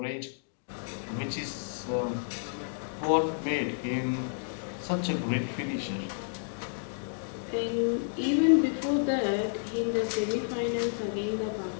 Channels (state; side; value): silent; right; digital silence